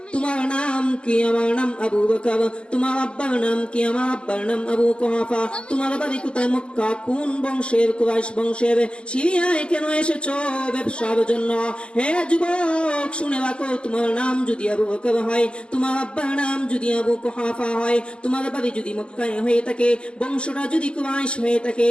তোমার নাম কি? আমার নাম আবু বকর। তোমার আব্বার নাম কি? আমার আব্বার নাম আবু কুহাফা। তোমার বাড়ি কোথায়? মক্কা। কোন বংশের? কুরাইশ বংশের। সিরিয়ায় কেন এসেছো? ব্যবসার জন্য। হে যুবক, শুনে রাখো, তোমার নাম যদি আবু বকর হয়, তোমার আব্বার নাম যদি আবু কুহাফা হয়, তোমার বাড়ি যদি মক্কায় হয়ে থাকে, বংশটা যদি কুরাইশ হয়ে থাকে,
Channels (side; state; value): right; late; 0.055 ms